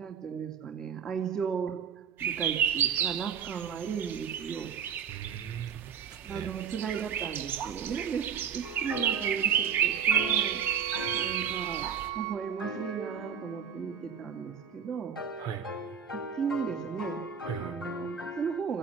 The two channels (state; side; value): quieter; left; 7.3 dB